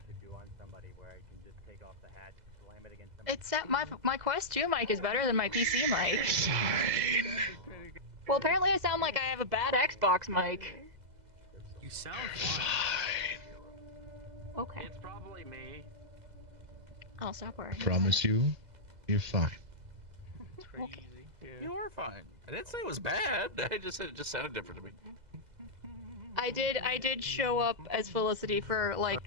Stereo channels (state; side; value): late; left; 2.0 ms